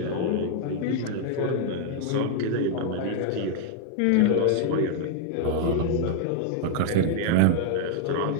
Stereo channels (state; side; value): different; both; correlation 0.00